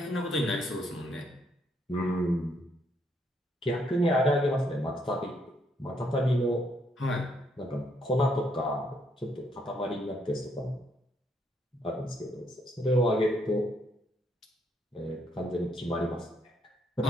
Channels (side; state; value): both; normal; correlation 0.73